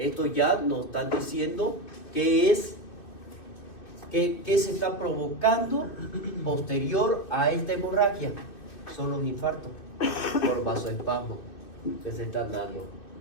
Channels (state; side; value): late; right; 2.6 ms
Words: ya nos están diciendo qué se está provocando posterior a esta hemorragia. Son los infartos por vasoespasmo que se están dando.